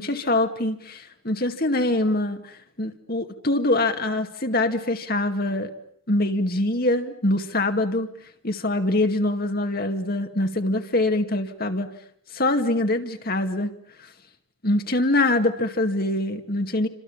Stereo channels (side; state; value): both; normal; correlation 0.36